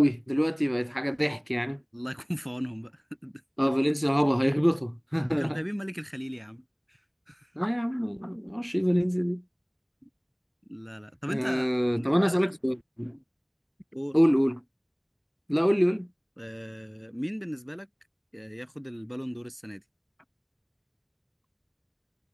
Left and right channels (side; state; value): both; identical; correlation 1.00